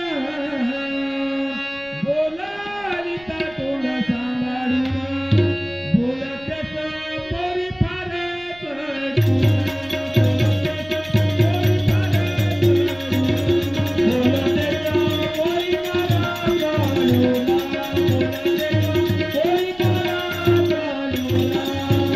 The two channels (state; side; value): noise; right; rumble, 24 dB below the sound